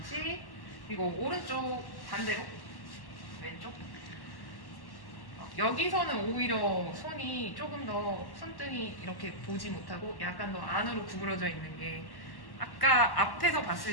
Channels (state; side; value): late; right; 1.1 ms